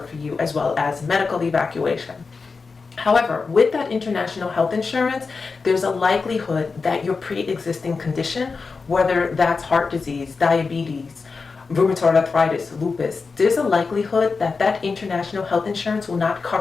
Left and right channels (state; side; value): quieter; right; 4.6 dB